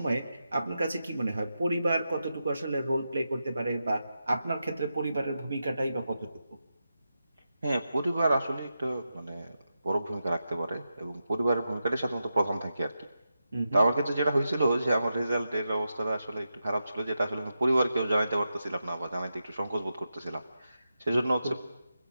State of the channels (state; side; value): inverted; both; correlation -0.88